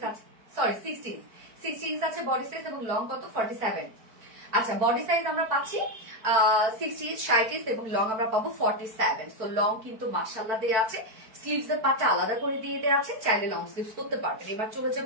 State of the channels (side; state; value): left; late; 4.6 ms